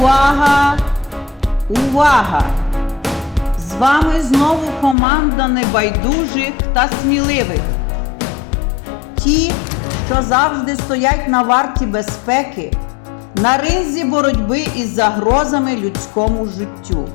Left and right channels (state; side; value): drops out; right; at 5.0 s